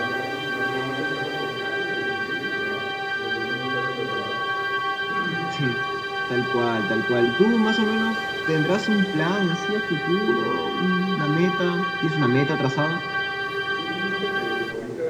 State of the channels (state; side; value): identical; both; correlation 1.00